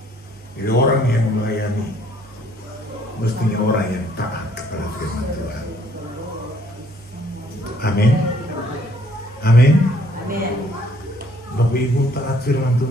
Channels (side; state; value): both; normal; correlation 0.63